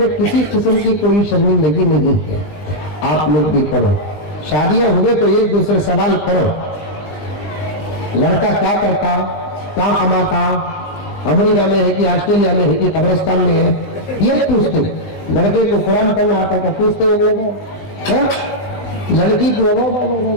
किसी किस्म की कोई शर्मिंदगी नहीं है। आप लोग भी करो। शादियां हुए तो एक दूसरे सवाल करो, लड़का क्या करता, क्या कमाता, अमेरिका में है कि ऑस्ट्रेलिया में है कि कब्रिस्तान में है, ये पूछते। लड़के को कुरान पढ़ना आता क्या पूछते हैं लोग? लड़की को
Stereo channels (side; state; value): right; late; 19 ms